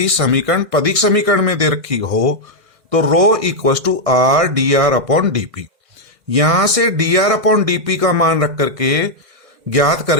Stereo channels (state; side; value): late; left; 1.6 ms